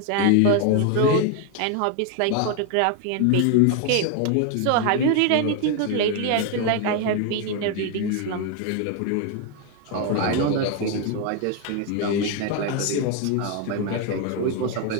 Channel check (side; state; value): both; different; correlation 0.01